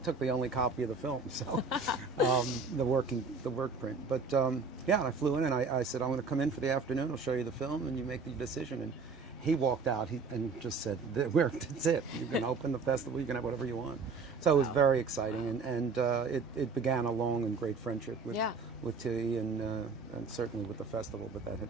the only copy of the film, so the work print. But yeah, I flew in, and I said, I'm going to come in for the afternoon. I'll show you the film, and you make the decision. And he walked out and just said, "That's it. You can open the festival. You can have whatever you want." So it was very exciting, and it began a long and great friendship with Thierry and certainly with the festival. But that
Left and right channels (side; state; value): left; quieter; 4.4 dB